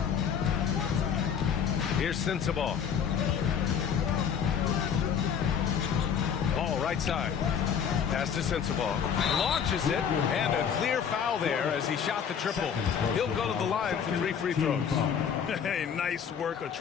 Here's Sensabaugh. Ball right side. Pass to Sensabaugh. Launches it, and a clear foul there as he shot the triple. He'll go to the line for 3 free throws. Hey, nice work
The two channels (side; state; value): right; quieter; 7.6 dB